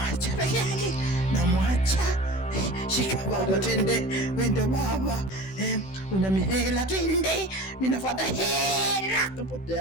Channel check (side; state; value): right; late; 16 ms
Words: peke yake. Shika baba twende. Wende baba. Una mihela twende. Mimi nafuata hela.